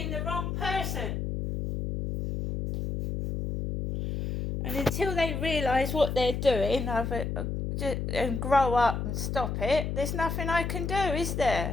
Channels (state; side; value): noise; left; hum, 3 dB below the sound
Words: the wrong person. And until they realise what they're doing and grow up and stop it, there's nothing I can do, is